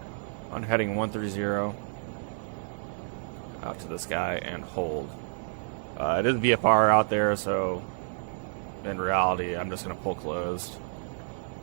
on heading 130 out to the sky and hold. It is VFR out there, so in reality, I'm just going to pull closed.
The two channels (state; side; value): silent; left; digital silence